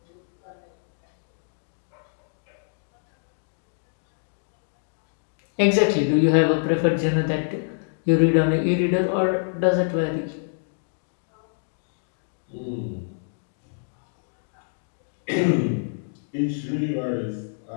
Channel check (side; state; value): right; silent; digital silence